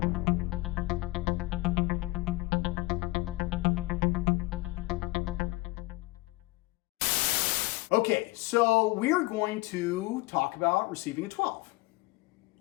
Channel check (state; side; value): quieter; right; 21.5 dB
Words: Okay, so we're going to talk about receiving a 12.